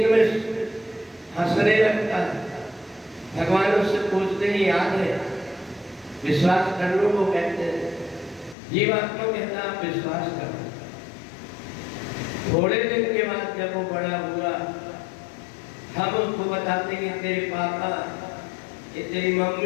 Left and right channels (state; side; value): drops out; right; at 8.6 s